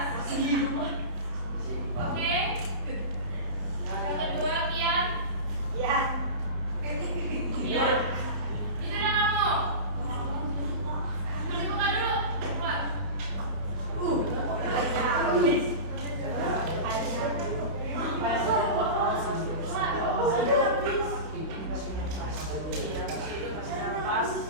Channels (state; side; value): late; left; 31 ms